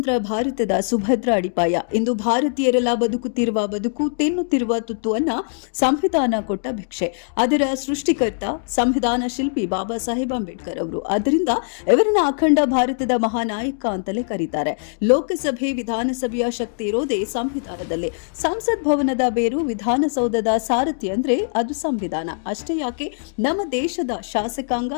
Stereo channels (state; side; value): silent; right; digital silence